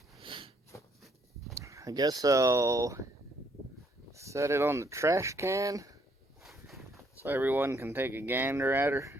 I guess I'll set it on the trash can so everyone can take a gander at her.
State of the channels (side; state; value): both; normal; correlation 0.69